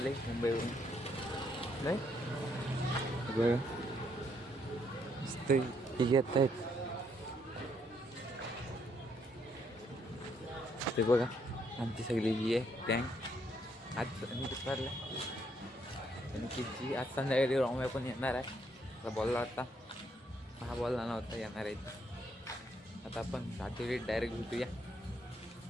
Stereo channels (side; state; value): both; normal; correlation 0.72